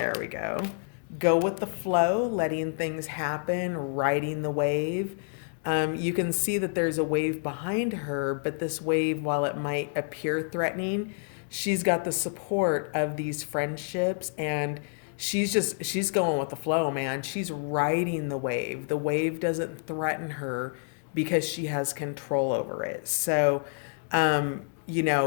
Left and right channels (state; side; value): silent; right; 59 dB below the other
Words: we go. Go with the flow, letting things happen, riding the wave. You can see that there's a wave behind her, but this wave, while it might appear threatening, she's got the support of these friendships, and she's going with the flow, man. She's riding the wave. The wave doesn't threaten her because she has control over it. So, um, you